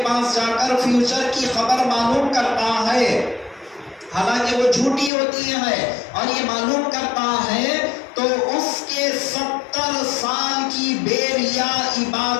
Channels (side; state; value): right; drops out; at 5.1 s